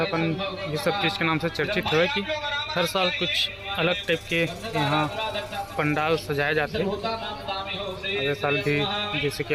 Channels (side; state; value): both; identical; correlation 1.00